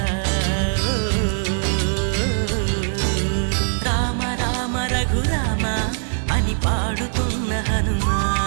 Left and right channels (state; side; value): silent; left; digital silence